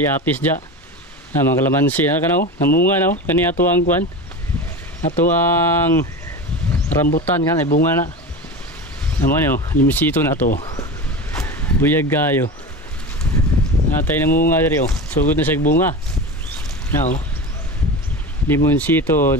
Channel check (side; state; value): both; normal; correlation 0.28